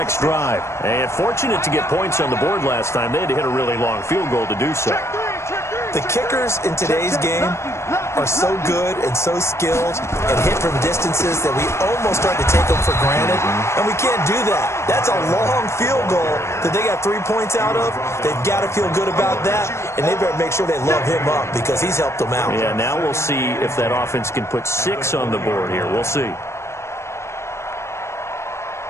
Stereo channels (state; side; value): late; right; 0.13 ms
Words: drive. And fortunate to get points on the board last time. They had to hit a really long field goal to do so. The kickers in today's game are so good and so skilled and hit from distances that we almost start to take them for granted. And we can't do that. That's a long field goal that they got 3 points out of. They've got to feel good about that, and they better make sure they love him up because he's helped them out. Yeah, now we'll see if that offense can put 6 on the board here. We'll see.